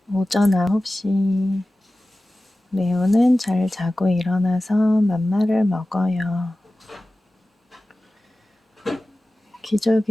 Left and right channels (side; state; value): both; normal; correlation 0.96